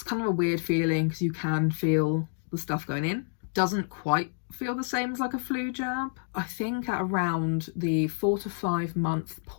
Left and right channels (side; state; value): right; silent; digital silence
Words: kind of a weird feeling because you can feel the stuff going in. Doesn't quite feel the same as like a flu jab. I think at around the 4 to 5 month